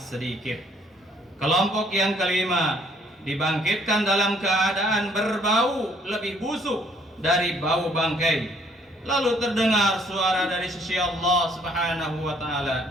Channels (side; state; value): both; normal; correlation 0.64